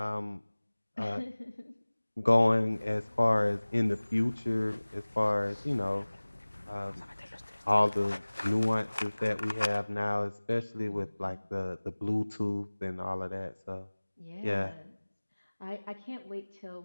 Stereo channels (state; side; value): inverted; both; correlation -1.00